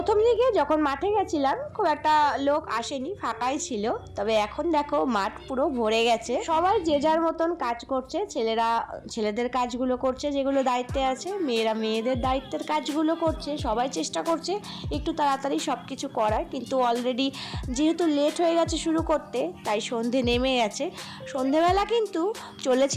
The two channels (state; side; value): identical; both; correlation 1.00